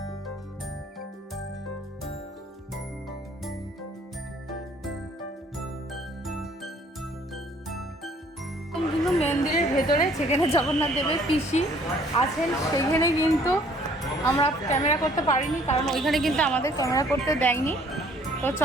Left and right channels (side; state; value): both; normal; correlation 0.58